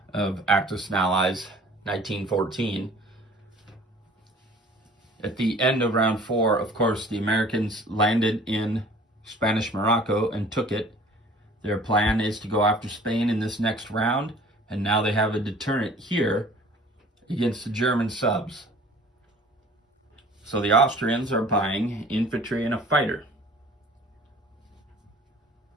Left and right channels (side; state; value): both; normal; correlation 0.49